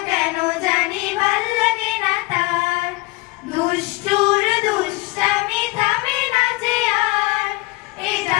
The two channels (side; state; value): right; quieter; 23.4 dB